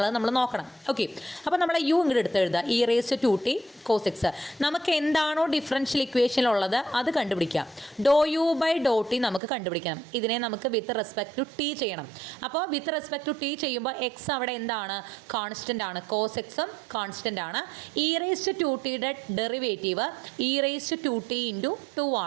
നമ്മൾ നോക്കണം. ഓക്കെ, അപ്പോൾ നമ്മൾ യു ഇങ്ങോട്ട് എടുത്ത് എഴുതുക, e⁻²t cos x. നമുക്ക് എന്താണോ ഡിഫറൻഷ്യൽ ഇക്വേഷനിലുള്ളത് അത് കണ്ടുപിടിക്കാം. ∂u/∂t നമുക്ക് കണ്ടുപിടിക്കണം. ഇതിനെ നമുക്ക് വിത്ത് റെസ്പെക്ട് ടു ടി ചെയ്യണം. അപ്പോൾ വിത്ത് റെസ്പെക്ട് ടു ടി ചെയ്യുമ്പോൾ എക്സ് അവിടെ എന്താണ്? കോൺസ്റ്റൻ്റ് ആണ്. കോസ് എക്സും കോൺസ്റ്റൻ്റ് ആണ്. e⁻²tയുടെ ഡെറിവേറ്റീവ് e⁻²t × 2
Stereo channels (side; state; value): left; drops out; at 9.4 s